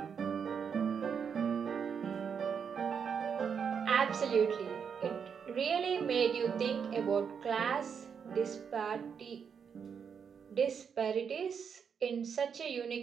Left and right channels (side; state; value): left; quieter; 6.9 dB